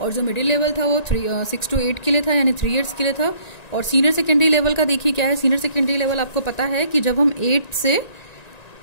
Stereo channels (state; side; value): late; right; 1.9 ms